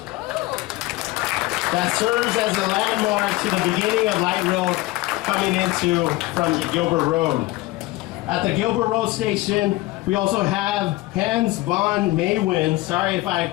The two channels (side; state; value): right; quieter; 19.1 dB